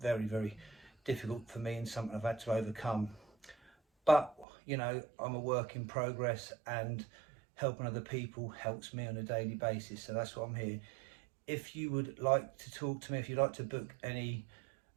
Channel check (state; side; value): drops out; left; at 4.5 s